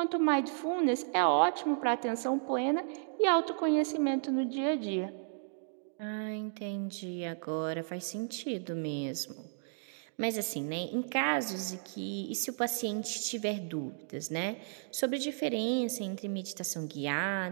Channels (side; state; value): left; silent; digital silence